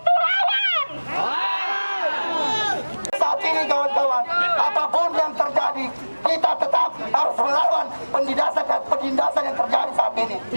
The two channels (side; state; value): both; inverted; correlation -1.00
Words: lawan. Saat ini kawan-kawan, apapun yang terjadi, kita tetap harus melawan penindasan yang terjadi saat ini.